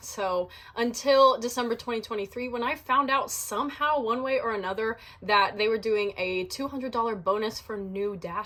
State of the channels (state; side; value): identical; both; correlation 1.00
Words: So until December 2023, when I found out somehow one way or another that they were doing a $200 bonus for new